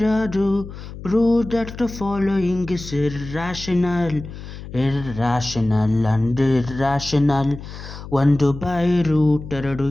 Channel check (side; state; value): left; noise; hum, 12 dB below the sound